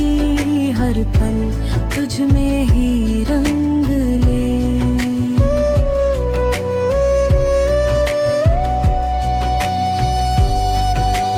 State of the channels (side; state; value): both; identical; correlation 1.00